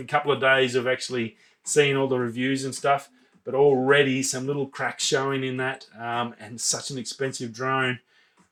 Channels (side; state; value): both; identical; correlation 1.00